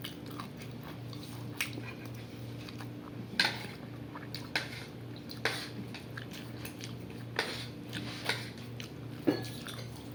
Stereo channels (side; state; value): both; identical; correlation 1.00